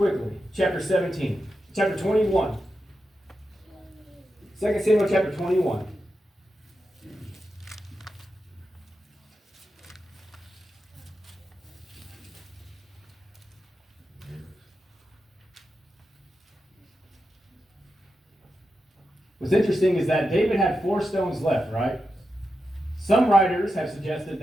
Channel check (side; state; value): both; normal; correlation 0.89